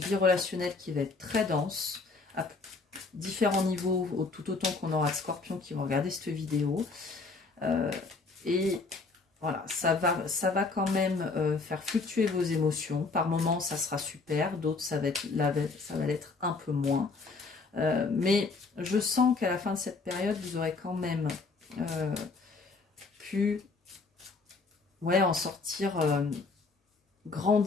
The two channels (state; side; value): quieter; right; 4.0 dB